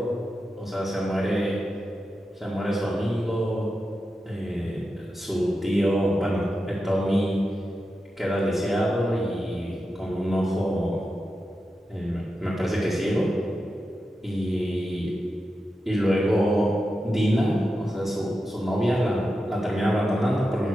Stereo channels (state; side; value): normal; both; correlation 0.90